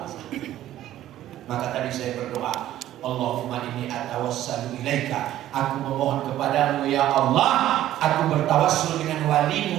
Maka tadi saya berdoa, Allahumma inni atawassalu ilaika, aku memohon kepadamu ya Allah, aku bertawassul dengan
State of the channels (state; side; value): quieter; left; 13.1 dB